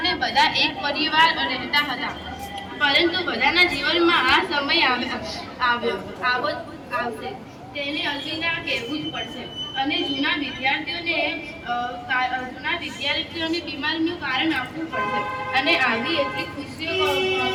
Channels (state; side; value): identical; both; correlation 1.00